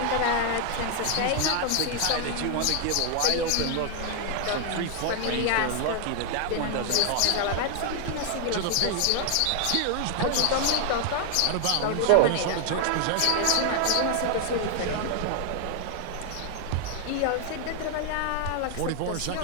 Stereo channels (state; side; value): different; both; correlation 0.00